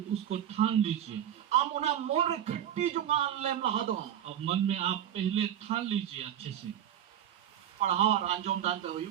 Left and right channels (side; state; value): left; quieter; 10.5 dB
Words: उसको ठान लीजिए। आम उना मौन रे खट्टी जोगा लेम लहा दो अब मन में आप पहले ठान लीजिए अच्छे से। पढ़ाओ और अंजोम दानते हो